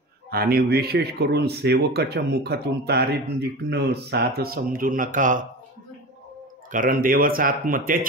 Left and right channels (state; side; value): normal; both; correlation 0.30